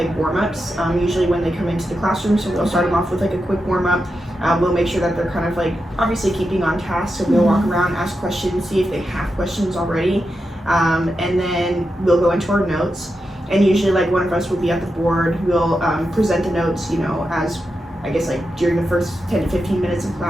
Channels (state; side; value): normal; both; correlation 0.88